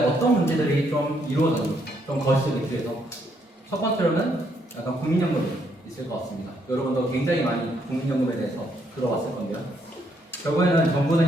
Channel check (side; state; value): both; normal; correlation 0.73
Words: 어떤 문제들이 좀 이루어졌는지 좀 거시기 위해서 첫 번째로는 약간 국민연금이 있을 것 같습니다. 여러분도 굉장히 많이 국민연금에 대해서 들어봤을 건데요. 결국에는 정부는